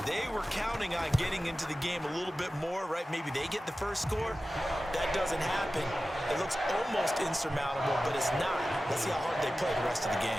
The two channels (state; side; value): normal; both; correlation 0.95